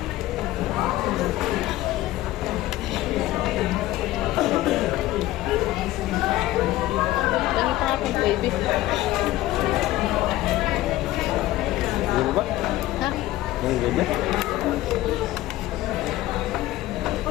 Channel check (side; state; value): right; quieter; 16.1 dB